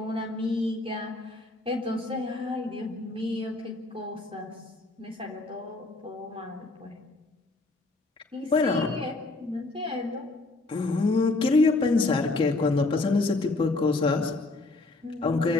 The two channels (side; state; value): right; quieter; 3.2 dB